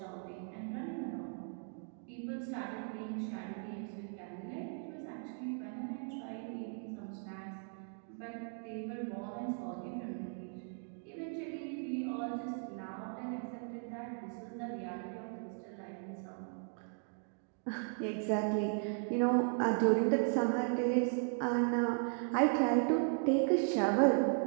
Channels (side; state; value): left; silent; 53 dB below the other